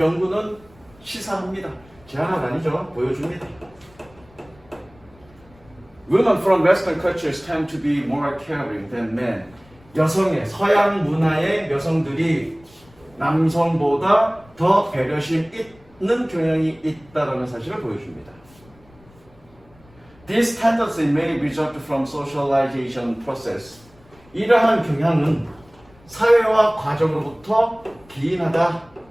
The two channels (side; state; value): left; noise; rumble, 27 dB below the sound